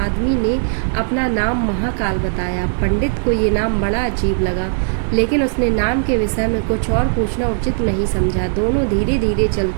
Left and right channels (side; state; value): left; silent; 66 dB below the other